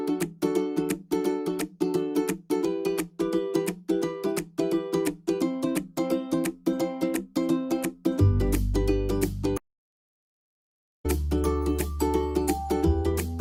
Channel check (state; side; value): identical; both; correlation 1.00